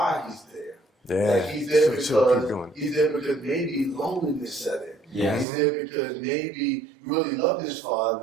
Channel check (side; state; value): left; drops out; at 5.5 s